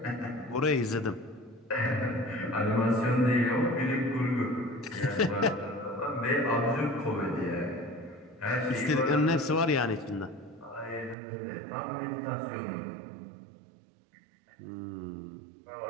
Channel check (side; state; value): left; drops out; at 11.2 s